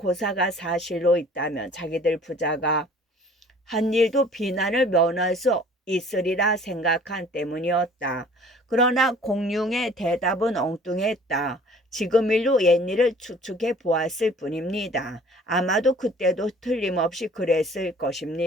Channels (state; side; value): normal; both; correlation 0.51